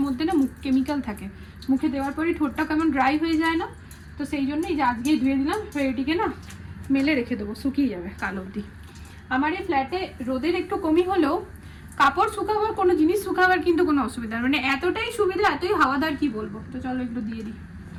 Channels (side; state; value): both; identical; correlation 1.00